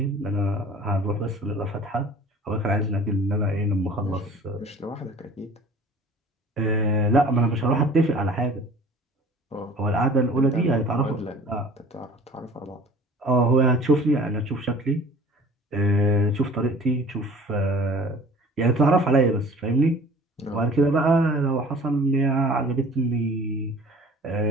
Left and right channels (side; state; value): both; normal; correlation 0.46